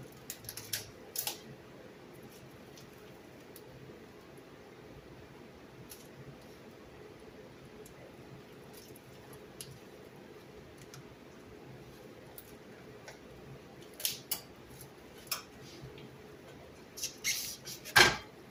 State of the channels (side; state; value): both; identical; correlation 1.00